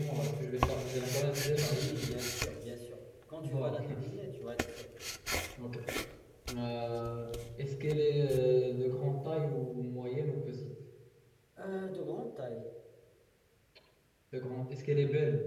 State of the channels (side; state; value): both; identical; correlation 1.00